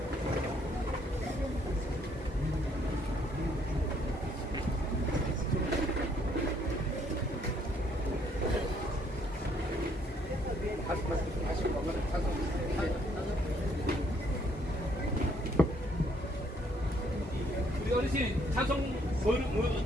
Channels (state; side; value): normal; both; correlation 0.67